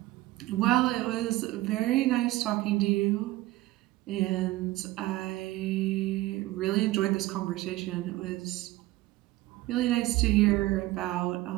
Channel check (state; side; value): quieter; left; 17.7 dB